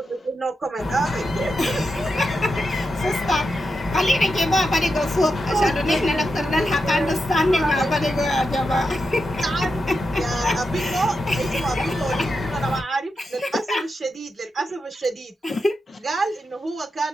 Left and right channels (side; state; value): both; normal; correlation 0.88